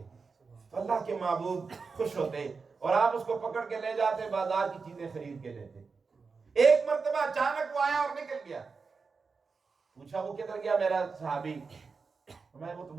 تو اللہ کے محبوب خوش ہوتے اور آپ اس کو پکڑ کے لے جاتے، بازار کی چیزیں خرید کے لیتے۔ ایک مرتبہ اچانک وہ آیا اور نکل گیا۔ پوچھا وہ کدھر گیا میرا صحابی؟ وہ تو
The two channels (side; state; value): left; quieter; 4.8 dB